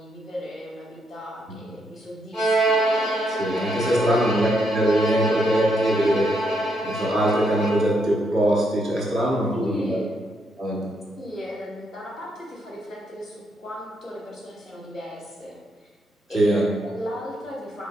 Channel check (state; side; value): normal; both; correlation 0.76